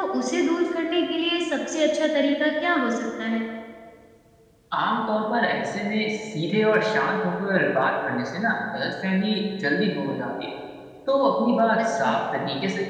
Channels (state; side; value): identical; both; correlation 1.00